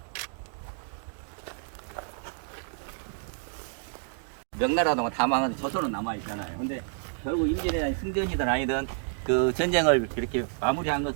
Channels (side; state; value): left; silent; digital silence